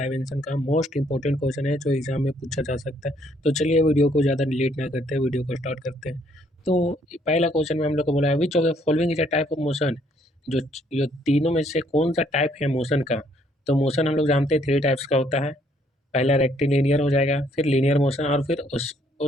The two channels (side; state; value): both; normal; correlation 0.67